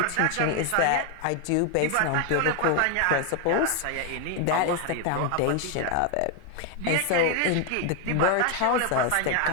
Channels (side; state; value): both; different; correlation 0.01